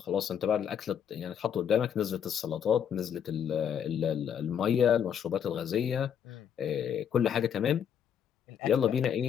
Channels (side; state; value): right; quieter; 8.5 dB